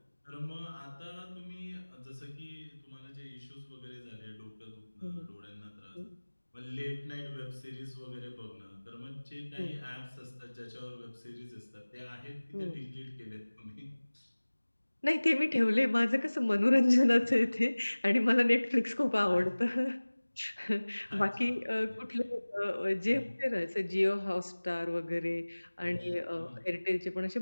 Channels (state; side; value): inverted; both; correlation -1.00